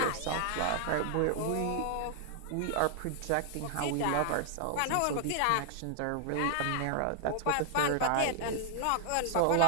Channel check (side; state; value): both; different; correlation 0.00